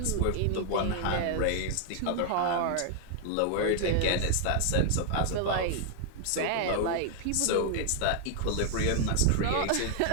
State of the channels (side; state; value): both; different; correlation 0.00